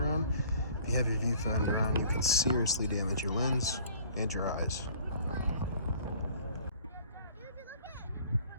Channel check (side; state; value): both; inverted; correlation -0.52